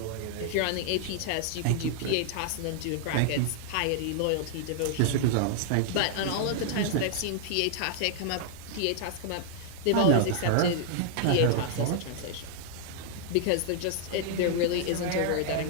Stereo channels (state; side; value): different; both; correlation -0.01